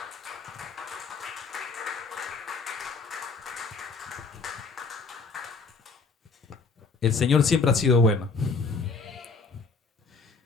El Señor siempre ha sido bueno.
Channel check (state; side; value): quieter; right; 4.3 dB